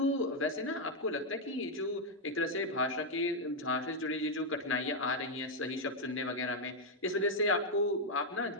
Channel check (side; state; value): both; normal; correlation 0.00